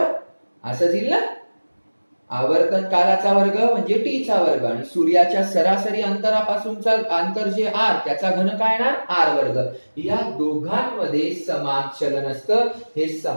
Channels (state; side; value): inverted; both; correlation -1.00